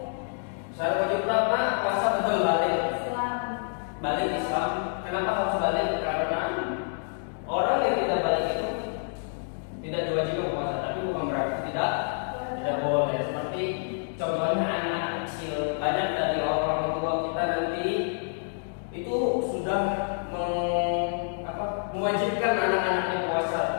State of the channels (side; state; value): right; silent; digital silence